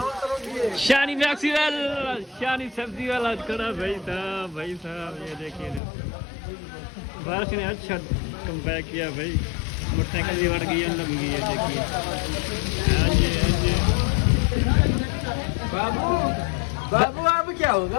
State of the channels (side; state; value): right; drops out; at 5.8 s